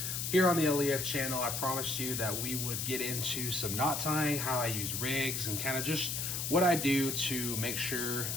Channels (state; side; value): noise; left; hiss, 2 dB below the sound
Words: Here on the LEF channel, I promised you that we would get into some knot tying, how I use rigs, and kind of just what I do to make sure